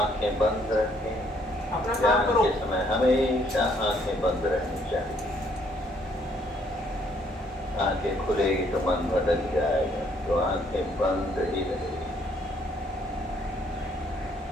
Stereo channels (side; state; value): both; normal; correlation 0.67